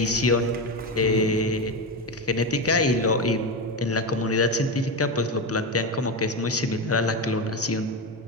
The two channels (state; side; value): normal; both; correlation 0.15